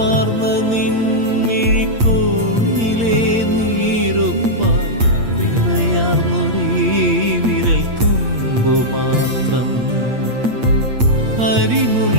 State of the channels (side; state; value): left; late; 8.6 ms